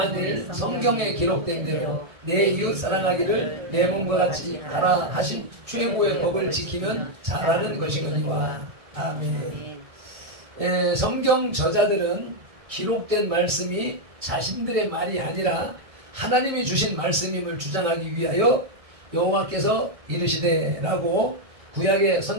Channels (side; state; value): left; late; 1.7 ms